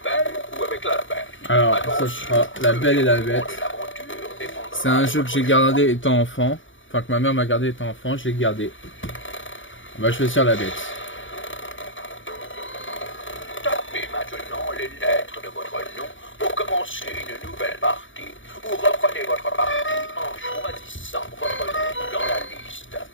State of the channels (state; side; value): late; right; 0.56 ms